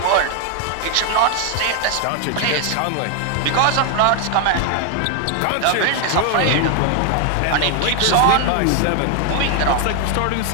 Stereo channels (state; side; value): different; both; correlation 0.01